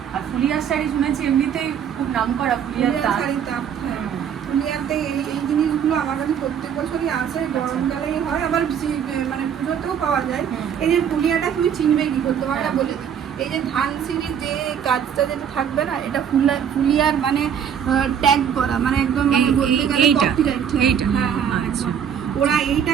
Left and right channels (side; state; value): left; quieter; 8.2 dB